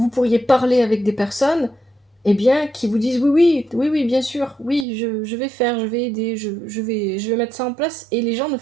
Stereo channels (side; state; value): left; drops out; at 4.9 s